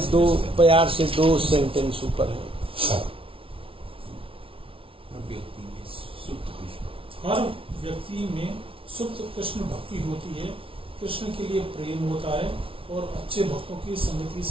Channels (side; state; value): left; late; 0.26 ms